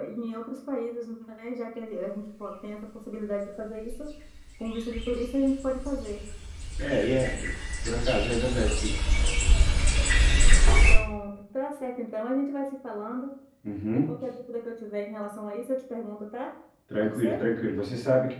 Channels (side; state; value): both; identical; correlation 1.00